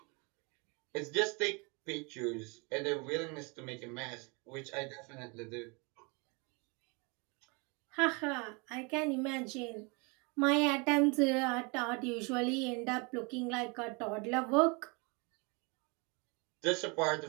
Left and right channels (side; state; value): left; quieter; 30.6 dB